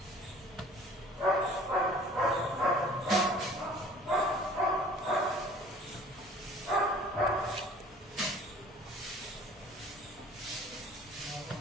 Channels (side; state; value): both; normal; correlation 0.50